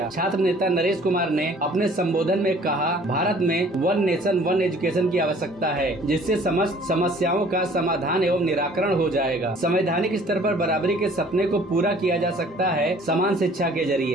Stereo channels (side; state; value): both; normal; correlation 0.54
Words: छात्र नेता नरेश कुमार ने अपने संबोधन में कहा, भारत में वन नेशन वन एजुकेशन की आवश्यकता है, जिससे समस्त समस्याओं का समाधान एवं निराकरण हो जाएगा। संवैधानिक स्तर पर बराबरी के सपने को पूरा किया जा सकता है समान शिक्षा के